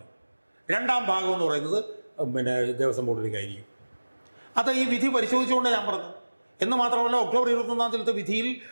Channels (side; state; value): both; inverted; correlation -1.00